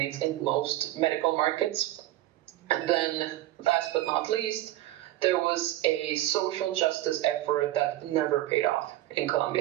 in most medical markets. And then, last but not least, there was a social justice effort that never paid off, in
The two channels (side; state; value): left; quieter; 15.2 dB